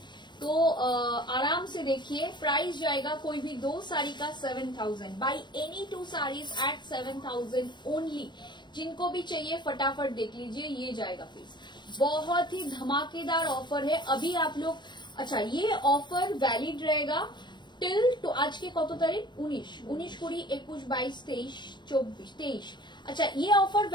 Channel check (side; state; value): right; late; 0.22 ms